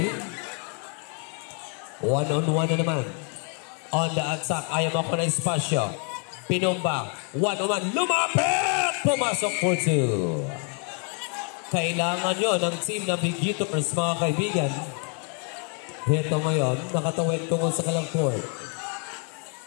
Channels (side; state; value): right; quieter; 40.0 dB